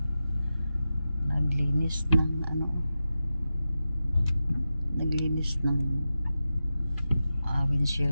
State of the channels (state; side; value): inverted; both; correlation -0.92